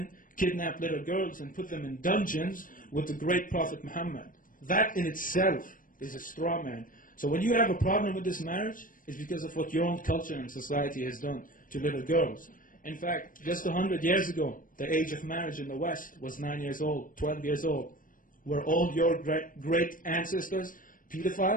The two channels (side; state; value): right; late; 0.40 ms